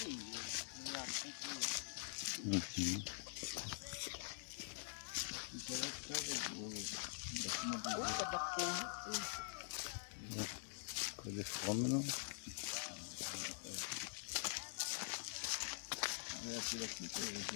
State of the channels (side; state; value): right; silent; digital silence